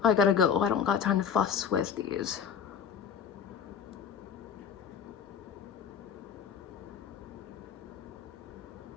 I gotta go. I don't got time to fuss with these.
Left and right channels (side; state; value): right; quieter; 7.3 dB